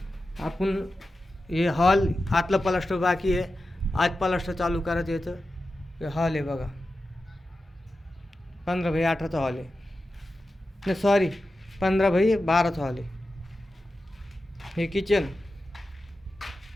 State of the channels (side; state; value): both; normal; correlation 0.92